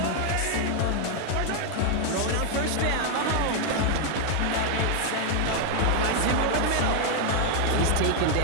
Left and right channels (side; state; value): both; different; correlation 0.00